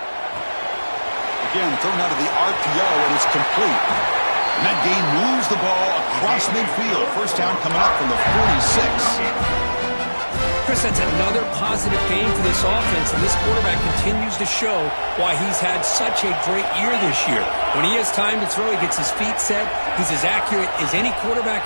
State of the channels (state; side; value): inverted; both; correlation -1.00